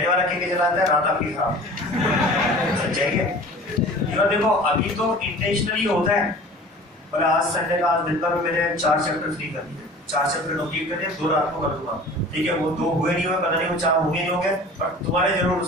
वाला कह के चलाता है, रात आपकी खराब। सच्चाई है। और देखो अभी तो इंटेंशनली होता है, बोले आज संडे का, आज दिन भर में मैंने 4 चैप्टर फ्री कर दिए, 4 चैप्टर कंप्लीट कर दिए, 2 रात को कर दूंगा, ठीक है। वो 2 हुए नहीं हुए पता नहीं, वो 4 होंगे नहीं होंगे, पर तुम्हारे जरूर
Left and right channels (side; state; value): both; normal; correlation 0.42